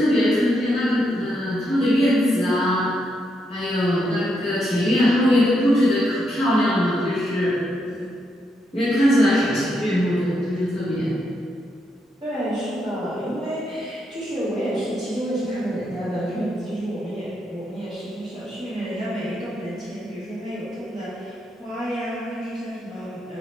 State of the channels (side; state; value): both; normal; correlation 0.80